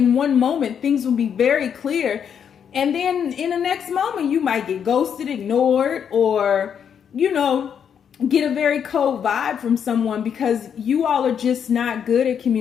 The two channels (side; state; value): right; quieter; 7.9 dB